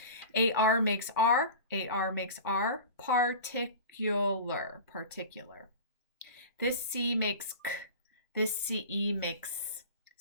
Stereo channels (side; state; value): both; inverted; correlation -0.35